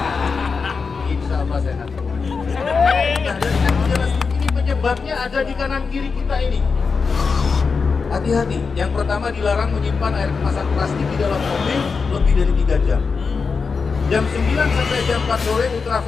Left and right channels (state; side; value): quieter; right; 5.0 dB